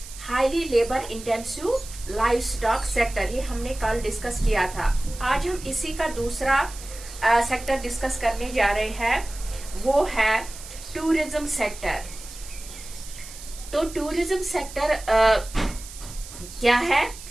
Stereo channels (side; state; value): right; noise; hiss, 15 dB below the sound